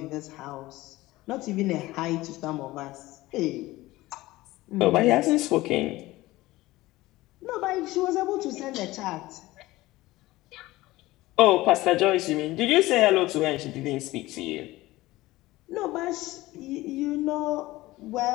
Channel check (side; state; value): right; quieter; 18.4 dB